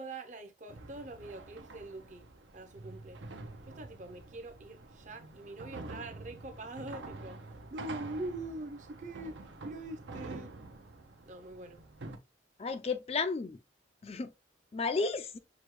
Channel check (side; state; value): both; normal; correlation 0.31